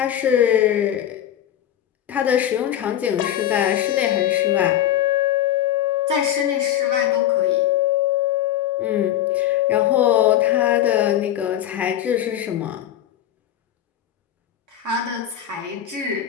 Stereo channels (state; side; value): quieter; right; 11.4 dB